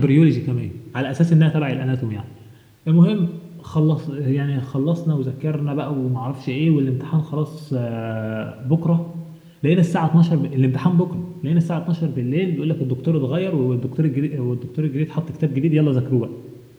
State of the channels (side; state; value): both; identical; correlation 1.00